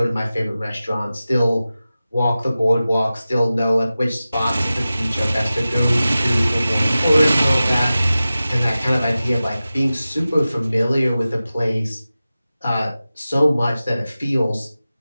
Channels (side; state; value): both; inverted; correlation -0.95